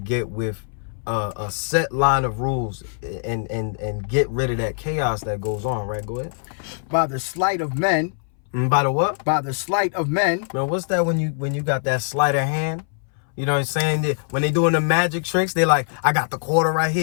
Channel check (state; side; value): silent; right; 61 dB below the other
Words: with a set line of rules and get rid of that chaos that goes on, right? Go ahead. By the sleight of men. By the what? By the sleight of men. Man, what's that when you got that sleight of hand? You know what I'm saying? When they doing the magic tricks, they like, I got the quarter right